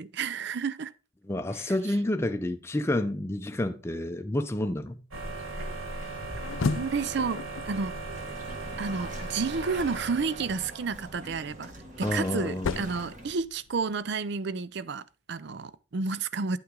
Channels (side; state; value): both; normal; correlation 0.49